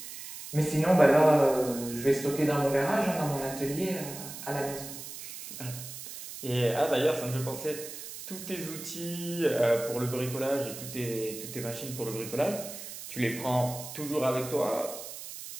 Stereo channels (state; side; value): noise; right; hiss, 11 dB below the sound